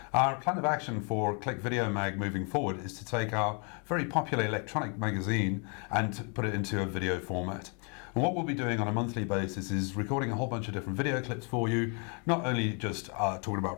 Our plan of action for Click Video Mag moving forward is to take our very popular electronic magazine and to put it into a video format. And what we'll be doing on a monthly basis is recording a whole bunch of different video clips for you, not only just talking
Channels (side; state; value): right; quieter; 36.9 dB